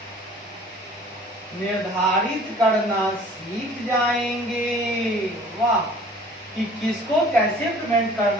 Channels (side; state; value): both; normal; correlation 0.50